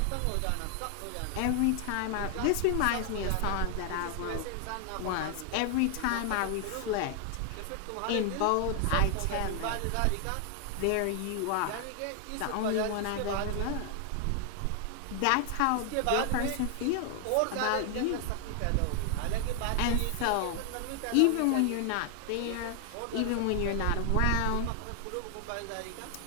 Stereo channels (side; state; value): both; different; correlation 0.00